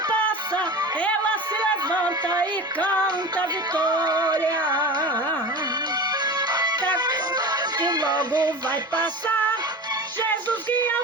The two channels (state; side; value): normal; both; correlation 0.31